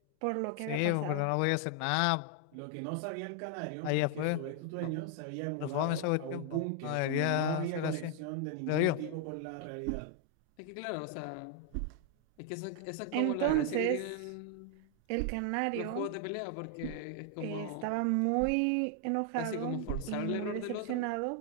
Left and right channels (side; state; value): both; different; correlation 0.00